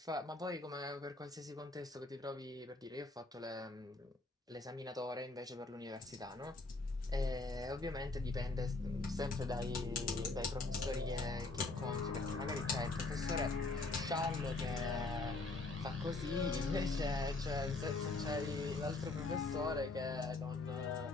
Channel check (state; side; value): quieter; right; 3.3 dB